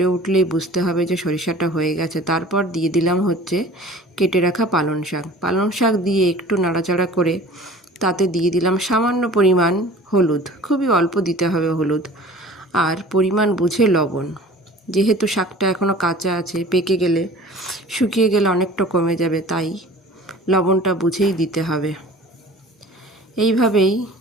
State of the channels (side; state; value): both; normal; correlation 0.44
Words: উঠলেই বুঝতে হবে যে সরিষাটা হয়ে গেছে। তারপর দিয়ে দিলাম কেটে রাখা পালং শাক দিয়ে একটু নাড়াচাড়া করে তাতে দিয়ে দিলাম সামান্য পরিমাণ হলুদ, খুবই অল্প দিতে হবে হলুদ, আর পরিমাণ বুঝে লবণ। যেহেতু শাকটা এখনও কাঁচা আছে, পেকে গেলে শুকিয়ে গেলে অনেকটা কমে যাবে, তাই লবণটা বুঝেই দিতে হবে। এইভাবেই